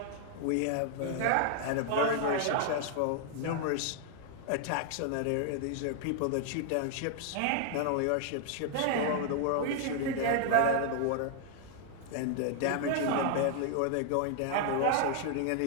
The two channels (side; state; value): both; different; correlation 0.00